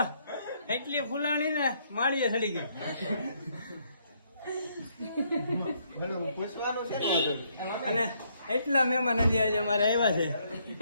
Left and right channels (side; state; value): both; inverted; correlation -0.71